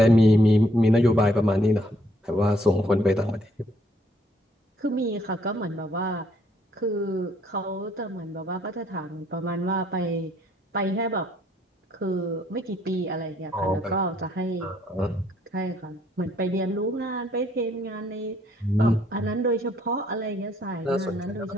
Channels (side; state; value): both; normal; correlation 0.67